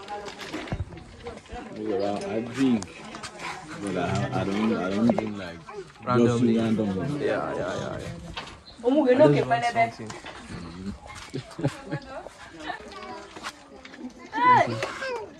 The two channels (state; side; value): identical; both; correlation 1.00